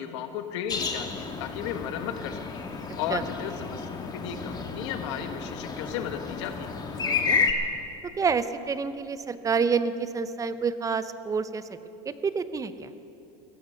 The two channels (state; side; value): normal; both; correlation 0.25